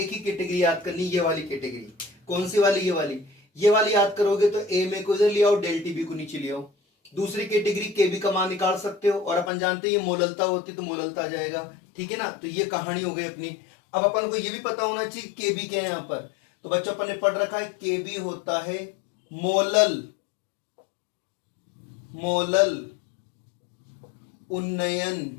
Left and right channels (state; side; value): drops out; right; at 9.5 s